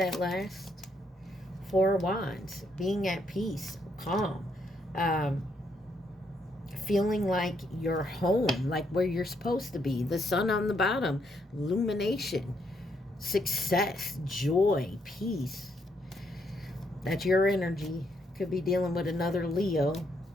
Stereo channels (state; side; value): normal; both; correlation 0.75